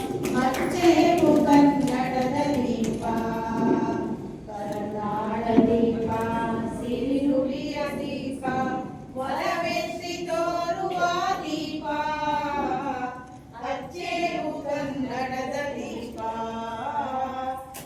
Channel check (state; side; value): identical; both; correlation 1.00